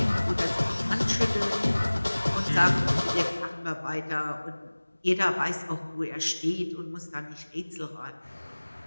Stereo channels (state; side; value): inverted; both; correlation -1.00